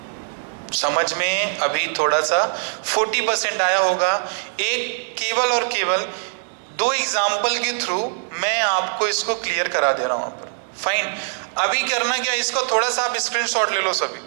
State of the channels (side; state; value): left; silent; 64 dB below the other